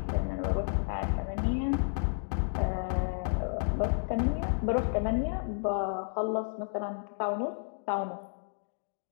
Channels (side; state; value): right; silent; digital silence